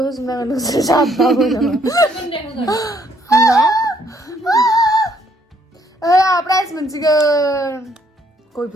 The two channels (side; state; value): both; normal; correlation 0.68